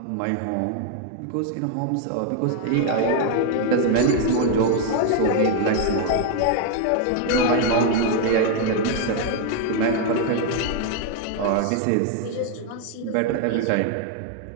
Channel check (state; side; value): different; both; correlation 0.00